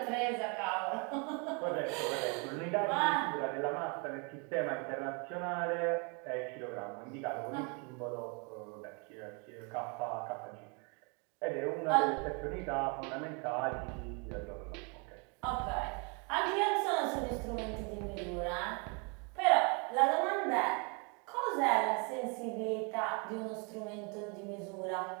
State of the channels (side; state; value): left; quieter; 33.9 dB